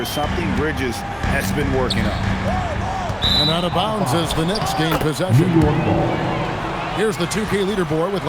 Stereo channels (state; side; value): identical; both; correlation 1.00